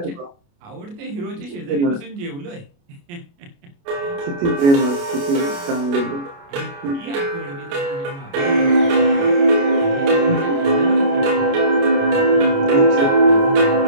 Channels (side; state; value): left; late; 29 ms